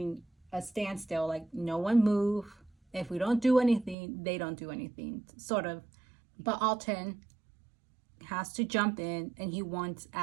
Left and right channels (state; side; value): drops out; left; at 4.0 s